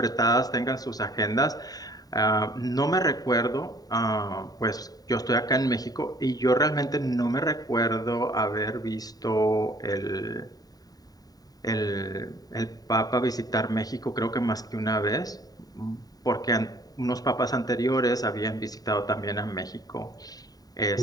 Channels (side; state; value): right; late; 0.18 ms